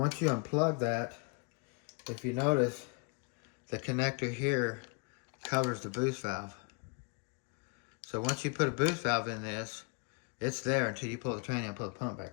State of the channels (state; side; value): quieter; right; 31.9 dB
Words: you unplug that, if you notice, the connector here covers the boost valve. So once you put a boost valve in this, it's there until you pull the tranny out and pull the pump